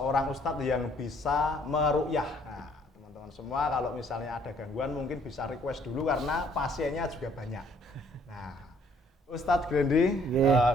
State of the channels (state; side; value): normal; both; correlation 0.63